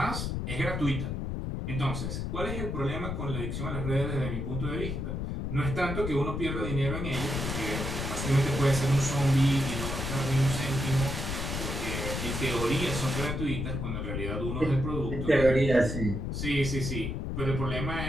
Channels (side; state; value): left; noise; rumble, 3 dB below the sound